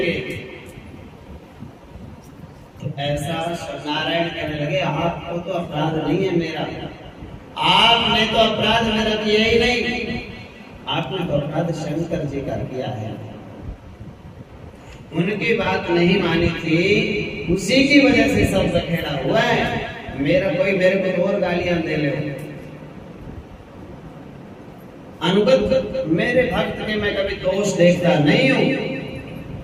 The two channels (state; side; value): identical; both; correlation 1.00